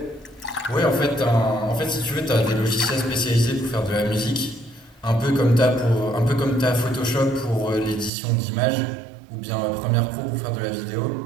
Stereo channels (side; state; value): left; drops out; at 8.1 s